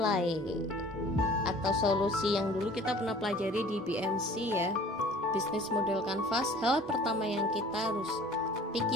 atau solusi yang dulu kita pernah pelajari di BMC ya, Business Model Canvas. Hal pertama yang kita harus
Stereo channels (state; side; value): normal; both; correlation 0.48